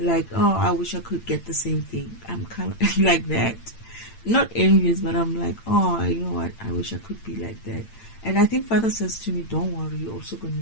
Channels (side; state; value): right; late; 8.8 ms